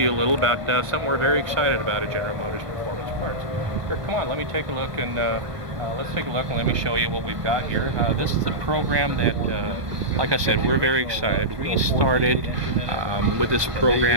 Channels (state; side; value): late; left; 1.3 ms